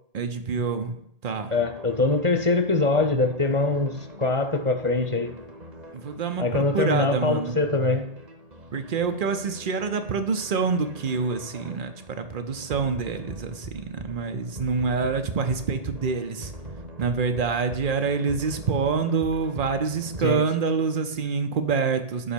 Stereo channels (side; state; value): left; late; 2.4 ms